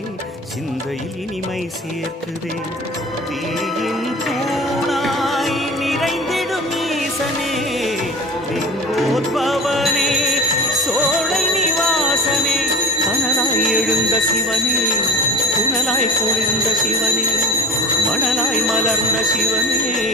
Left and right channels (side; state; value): both; normal; correlation 0.34